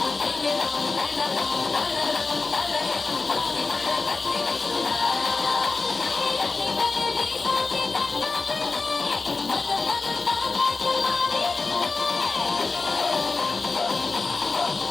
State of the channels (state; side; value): quieter; right; 4.0 dB